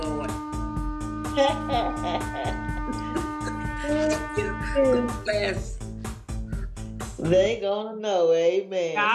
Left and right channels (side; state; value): both; identical; correlation 1.00